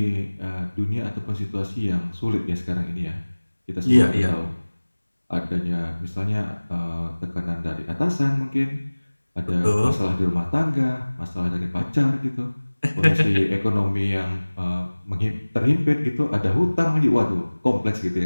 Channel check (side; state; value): both; inverted; correlation -1.00